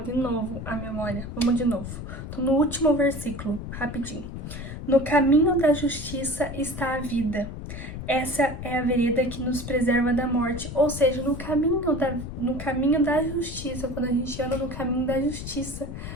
de novo a memória. Vamos de novo. Tô no último versículo, rapidinho. No caminho da justiça está a vida. Essa é a vereda que nos preserva da morte. Ou seja, no caminho da justiça, quando a gente anda no caminho da justiça,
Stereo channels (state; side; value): noise; left; rumble, 8 dB below the sound